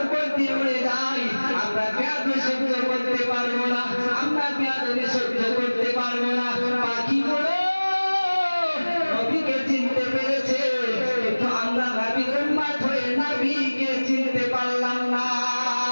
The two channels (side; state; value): both; inverted; correlation -1.00